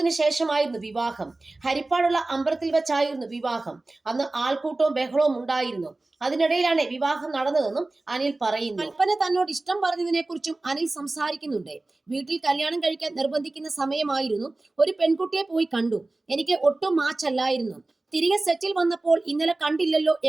ശേഷമായിരുന്നു വിവാഹം. ഹരിപ്പാടുള്ള അമ്പലത്തിൽ വെച്ചായിരുന്നു വിവാഹം. അന്ന് ആൾക്കൂട്ടവും ബഹളവും ഉണ്ടായിരുന്നു. അതിനിടയിലാണ് വിവാഹം നടന്നതെന്നും അനിൽ പറയുന്നു. കൽപ്പന തന്നോട് ഇഷ്ടം പറഞ്ഞതിനെ കുറിച്ചും അനിൽ സംസാരിക്കുന്നുണ്ട്. വീട്ടിൽ കല്യാണം കഴിക്കാൻ നിർബന്ധിക്കുന്ന സമയമായിരുന്നു. ഒരു പെൺകുട്ടിയെ പോയി കണ്ടു. എനിക്ക് ഒട്ടും മാച്ചല്ലായിരുന്നു. തിരികെ സെറ്റിൽ വന്നപ്പോൾ ഇന്നലെ കണ്ടില്ലല്ലോ,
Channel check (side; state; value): left; quieter; 3.0 dB